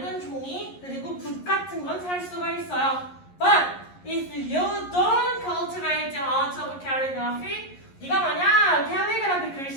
종이 그리고 붓 같은 건 살 수가 있어요. But if you don't cultivate the art of calligraphy, 네가 만약 캘리그라피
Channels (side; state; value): right; late; 11 ms